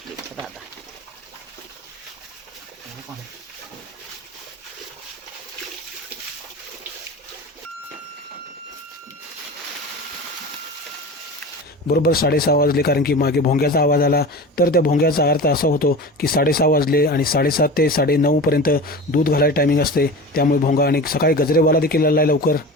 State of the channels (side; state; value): both; normal; correlation 0.32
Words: राधा. बरोबर 6:30 वाजले, कारण की मागे भोंग्याचा आवाज आला. तर त्या भोंग्याचा अर्थ असा होतो की 6:30 वाजले आणि 7:30 ते 9:30 पर्यंत दूध घालायला टायमिंग असते. त्यामुळे भोंगा. आणि सकाळी गजरेवाला देखील आला आहे लवकर.